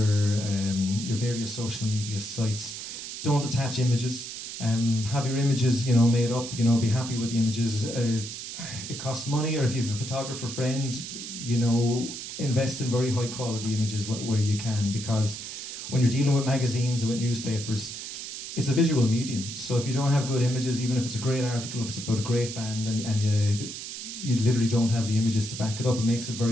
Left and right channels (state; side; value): noise; right; hiss, 8 dB below the sound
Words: various social media sites. Don't attach images. Have your images, you know, made up. You know, be happy with the images. It costs money, or if you have a photographer friend, you know, invest in very high quality images where you can, because when you're dealing with magazines and with newspapers, it's a visual medium. So if you don't have good images, even if it's a great article, if it's about a great band, and you literally don't have the images to back it up, it makes it